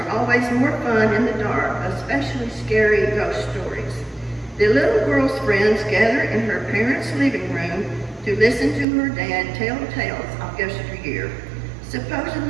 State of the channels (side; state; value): left; drops out; at 8.8 s